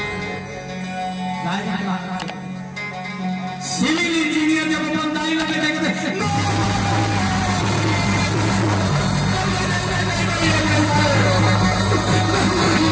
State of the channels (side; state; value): both; identical; correlation 1.00